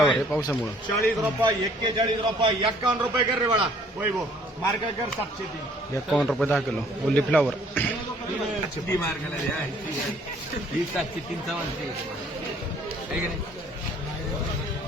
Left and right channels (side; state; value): both; normal; correlation 0.59